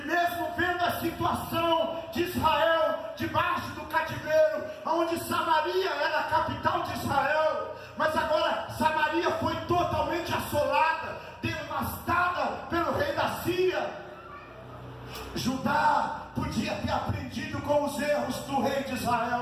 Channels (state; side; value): identical; both; correlation 1.00